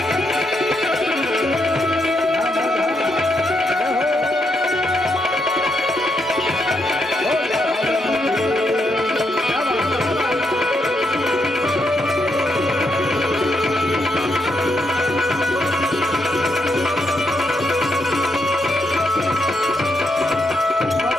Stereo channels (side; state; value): both; normal; correlation 0.79